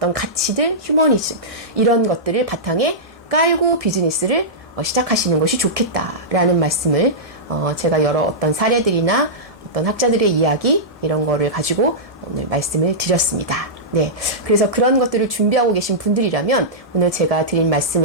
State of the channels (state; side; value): normal; both; correlation -0.14